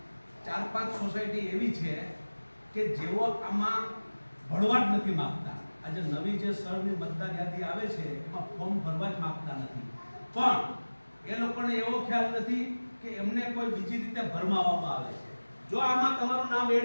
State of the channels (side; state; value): both; inverted; correlation -1.00